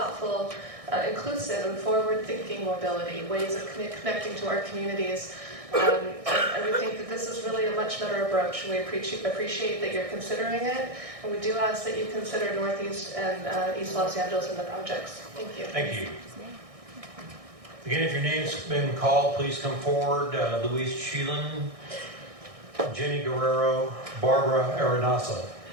inclusive, and forward-thinking mobility, ways of connecting to our communities. And we think that this is really a much better approach. We appreciate that you're considering it, and we do ask that you consider Northeast and East Los Angeles in the projects. Thank you. Thank you. Again, if your name's been called, please come forward. Louise Sheelan, Jenny Guerrero, Barbara Arenasa.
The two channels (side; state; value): left; late; 1.6 ms